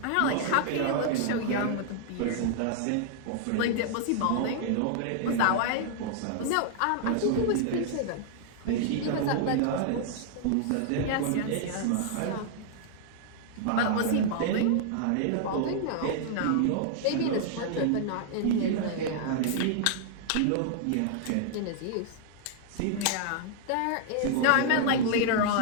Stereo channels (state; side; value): different; both; correlation -0.01